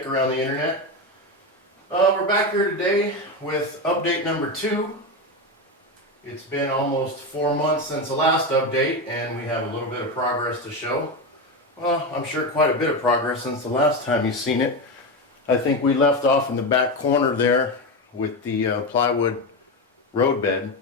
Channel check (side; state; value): both; normal; correlation 0.15